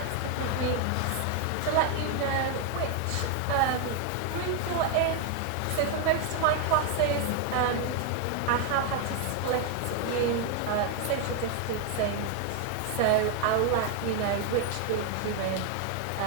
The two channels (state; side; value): different; both; correlation 0.01